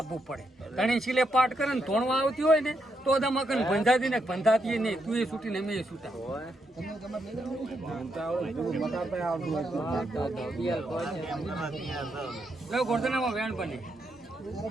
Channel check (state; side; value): normal; both; correlation 0.80